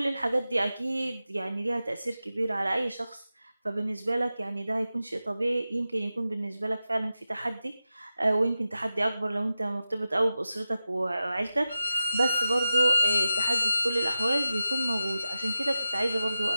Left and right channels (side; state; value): both; inverted; correlation -0.93